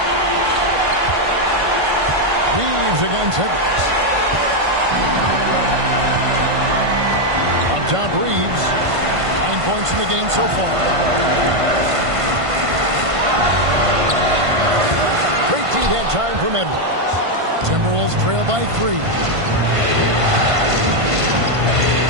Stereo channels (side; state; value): left; late; 1.5 ms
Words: Reeves against Edwards. Up top, Reeves. 9 points in the game so far. Great D-head time from Edwards. Timberwolves trail by 3.